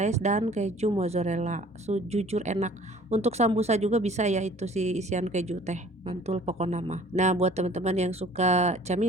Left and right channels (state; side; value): normal; both; correlation 0.52